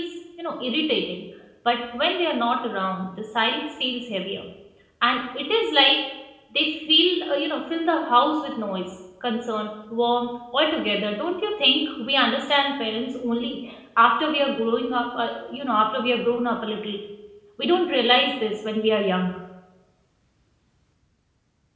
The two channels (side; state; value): both; identical; correlation 1.00